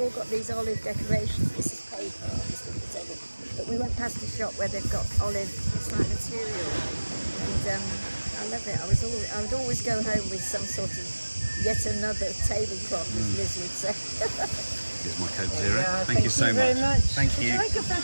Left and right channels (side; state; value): both; inverted; correlation -1.00